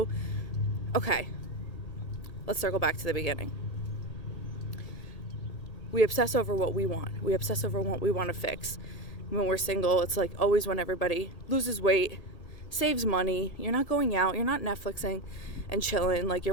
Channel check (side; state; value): right; late; 1.8 ms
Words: okay, let's circle back to the beginning. We obsess over what we want. We obsess over what we want to fix. When we're single, it's like always when everybody loses weight, saves money, you're not going out, you're not Netflixing and chilling, like